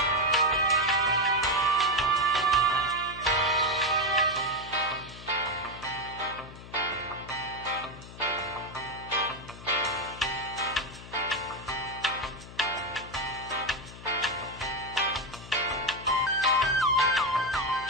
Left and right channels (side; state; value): left; noise; hum, 15 dB below the sound